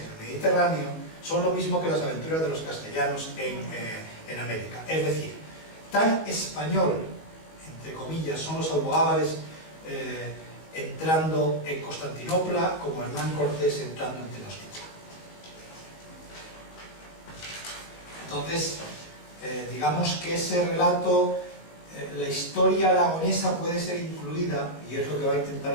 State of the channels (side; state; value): right; late; 19 ms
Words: el Mediterráneo son lo mismo que las aventuras de los castellanos en América. Es decir, tan español, entre comillas, son los almogávares entrando en Constantinopla como Hernán Cortés entrando en Tenochtitlan. Entonces, digamos que ese relato, la historia aragonesa puede ser incluida, y es lo que va a intentar